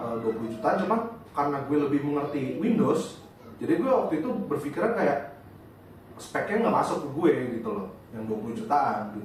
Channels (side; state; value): both; identical; correlation 1.00